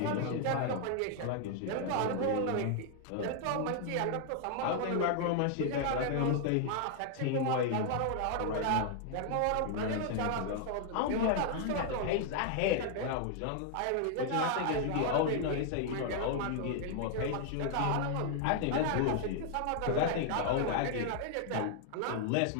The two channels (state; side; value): different; both; correlation 0.00